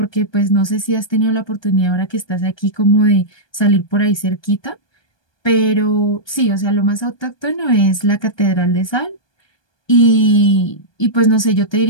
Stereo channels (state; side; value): late; right; 1.2 ms